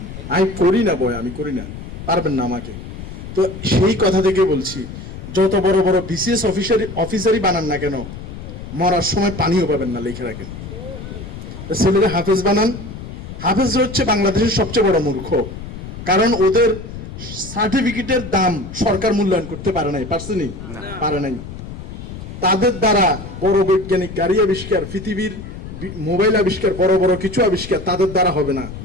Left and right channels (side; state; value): left; noise; rumble, 11 dB below the sound